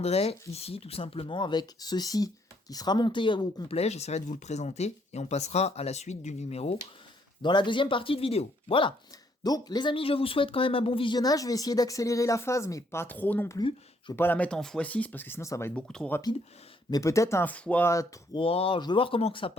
ici tout simplement avec ceci qui sera monté au complet. J'essaierai de vous le présenter et on passera à la suite du numéro dans la deuxième partie de vidéo. Voilà. Donc, les amis, je vous souhaite quand même un bon visionnage. Je vais essayer d'accélérer la phase, mais pas trop non plus. Je vais pas la mettre en x6 parce que sinon ça va être beaucoup trop rapide. Mais peut-être un x3. Je vais voir comment que ça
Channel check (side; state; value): both; normal; correlation 0.69